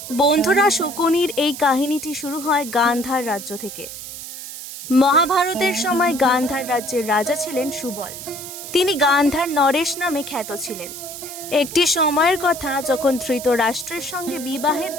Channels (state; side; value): noise; right; hiss, 11 dB below the sound